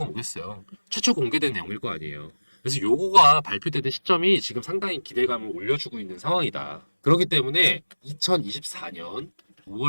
뭐겠어요. 최초 공개된 내용일 거 아니에요. 그래서 요거가 발표되는 시점이 지금 상당히 기대감을 올려주고 있는 상황이다. 그렇기 때문에 2024년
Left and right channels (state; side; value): inverted; both; correlation -1.00